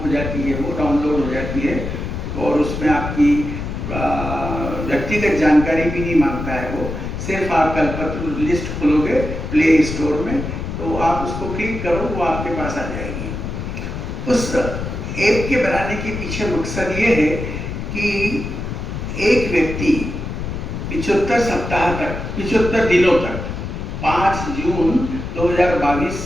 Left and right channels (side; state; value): left; noise; rumble, 5 dB below the sound